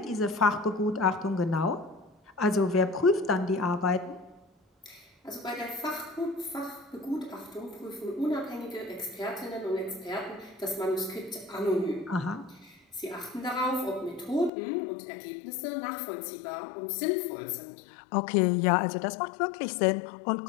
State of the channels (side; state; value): right; drops out; at 14.5 s